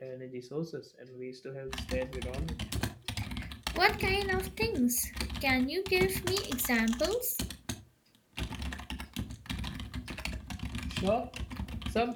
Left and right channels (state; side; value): identical; both; correlation 1.00